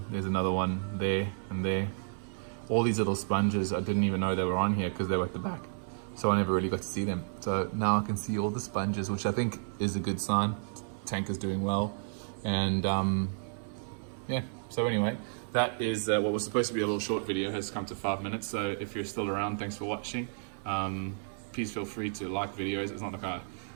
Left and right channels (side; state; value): left; silent; 57 dB below the other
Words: another one there and there. All these little sponges, I didn't even know they were on here because they were at the back. so I never really got to see them. So now I can see all the sponges, which I think is a good sign. Tank is doing well. And yeah, so anyway, that is what was supposed to be a little short video has come to 5 minutes. So if you're still around, thanks for watching. Please feel free to like videos. It's not like I